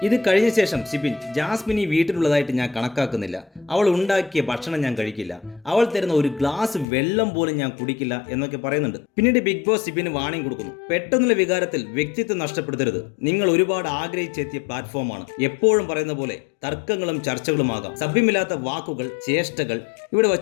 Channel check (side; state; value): right; drops out; at 6.9 s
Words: ഇത് കഴിഞ്ഞ ശേഷം സിബിൻ ജാസ്മിൻ ഈ വീട്ടിലുള്ളതായിട്ട് ഞാൻ കണക്കാക്കുന്നില്ല, അവൾ ഉണ്ടാക്കിയ ഭക്ഷണം ഞാൻ കഴിക്കില്ല, അവൾ തരുന്ന ഒരു ഗ്ലാസ് വെള്ളം പോലും ഞാൻ കുടിക്കില്ല എന്നൊക്കെ പറയുന്നുണ്ട്. പിന്നീട് ബിഗ് ബോസ് സിബിന് വാണിംഗ് കൊടുക്കുന്നു. പെട്ടെന്നുള്ള വികാരത്തിൽ വ്യക്തിത്വം നഷ്ടപ്പെടുത്തരുത്. നിങ്ങൾ ഒരുപാട് ആഗ്രഹിച്ചെത്തിയ പ്ലാറ്റ്ഫോമാണ്. എപ്പോഴും പറയുന്ന പോലെ തർക്കങ്ങളും ചർച്ചകളുമാകാം. സഭ്യമില്ലാത്ത വാക്കുകൾ, ചേഷ്ടകൾ ഇവിടെ